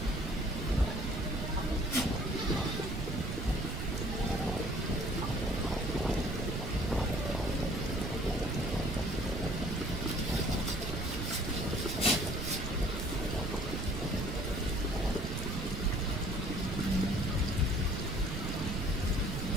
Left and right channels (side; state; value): right; noise; rumble, 3 dB below the sound